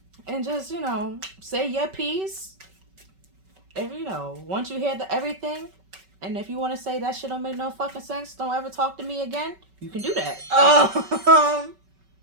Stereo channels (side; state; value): left; late; 5.3 ms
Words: and just say your piece. If once you hear everything, and if you want to say that shit don't make no fucking sense, don't ever talk to me again. You can do that.